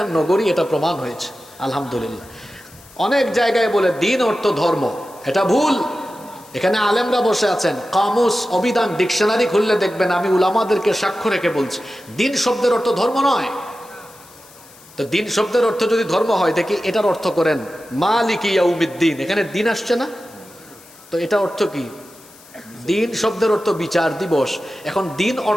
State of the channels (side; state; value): left; noise; hiss, 24 dB below the sound